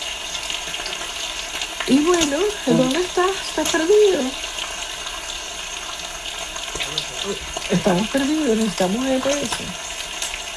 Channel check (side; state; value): both; identical; correlation 1.00